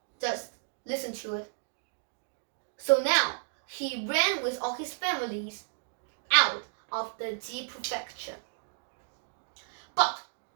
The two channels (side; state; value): left; silent; digital silence